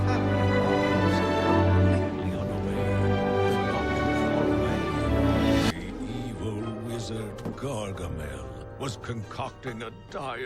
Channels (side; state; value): both; identical; correlation 1.00